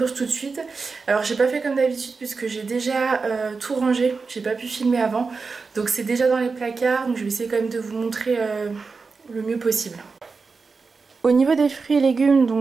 tout de suite. Alors j'ai pas fait comme d'habitude puisque j'ai déjà tout rangé. J'ai pas pu filmer avant. Donc c'est déjà dans les placards. Donc je vais essayer quand même de vous montrer le mieux possible. Au niveau des fruits et légumes,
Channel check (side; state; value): left; quieter; 4.6 dB